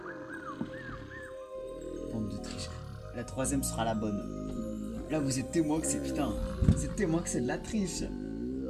Bande de triche. La troisième sera la bonne. Là, vous êtes témoin que c'est putain. Vous êtes témoin que c'est de la triche.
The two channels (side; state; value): both; identical; correlation 1.00